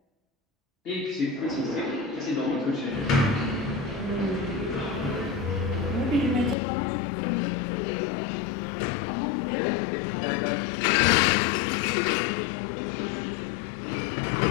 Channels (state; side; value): drops out; right; at 6.6 s